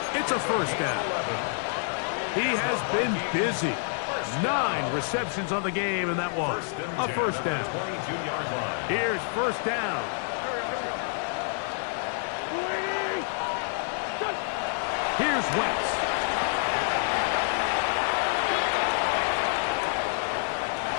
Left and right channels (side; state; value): right; silent; 60 dB below the other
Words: It's a first down. He has been busy. 9 receptions on the game, and that was a first down. Here's first down. Here's Wentz.